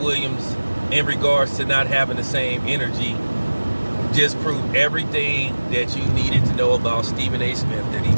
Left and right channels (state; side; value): inverted; both; correlation -1.00